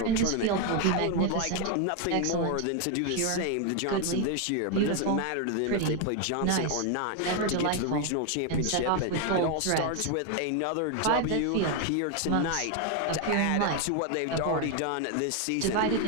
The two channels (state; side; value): different; both; correlation 0.01